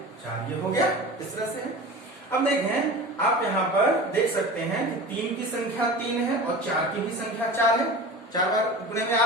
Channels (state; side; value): normal; both; correlation 0.34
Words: 4, ये हो गया। इस तरह से है। अब देखें आप यहाँ पर देख सकते हैं कि 3 की संख्या 3 है और 4 की भी संख्या 4 है, 4 बार गुणे में आ